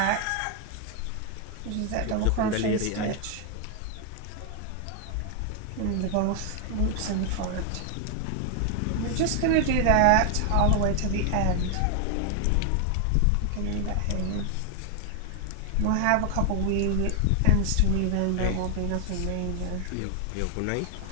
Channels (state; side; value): different; both; correlation 0.00